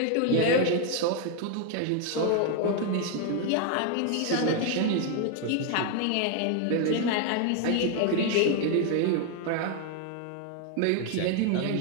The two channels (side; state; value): both; different; correlation 0.00